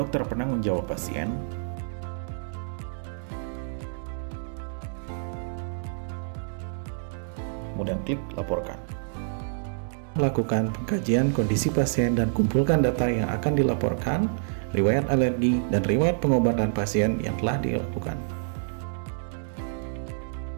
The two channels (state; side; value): silent; left; digital silence